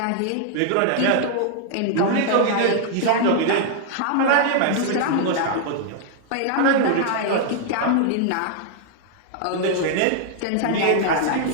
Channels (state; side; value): different; both; correlation 0.00